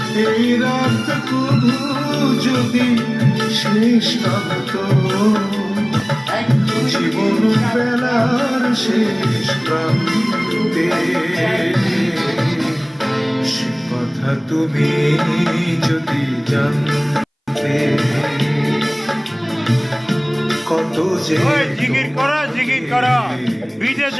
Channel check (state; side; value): identical; both; correlation 1.00